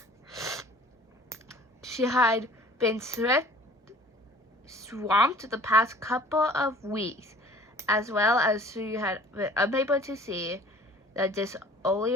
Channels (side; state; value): both; normal; correlation 0.50